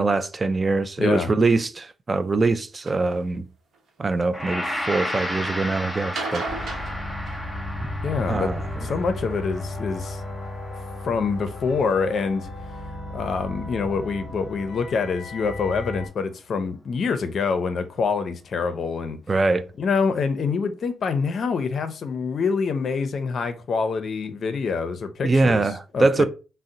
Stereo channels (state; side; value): normal; both; correlation 0.82